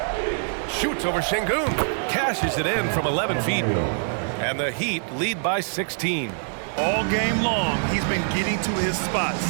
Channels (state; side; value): silent; left; 57 dB below the other